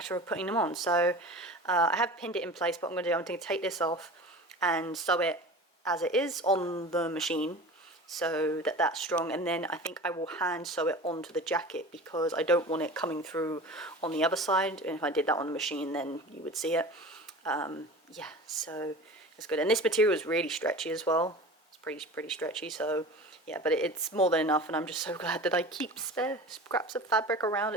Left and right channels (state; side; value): normal; both; correlation 0.36